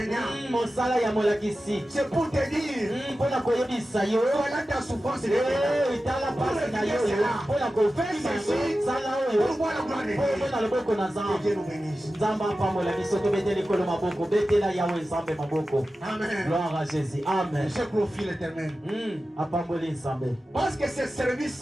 mosala ya molakisi C'est pour te dire, mpona koyebisa yo voilà ta souffrance. Et tala pasi na yo mpona kofima yango sala oyo pour voir la gloire de mpo Dieu. omona loboko na Que nzambe. Dieu nous bénisse. nzambe apambola biso tobete likolo maboko betela yawe nzambe maboko. Amen. gloire à Jésus. Amen. Je glorifie l'éternel. apamboli nzambe. Parce que ce service,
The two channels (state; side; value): normal; both; correlation 0.94